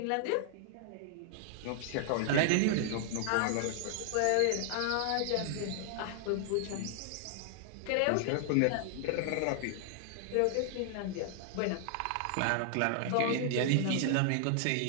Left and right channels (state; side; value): different; both; correlation 0.00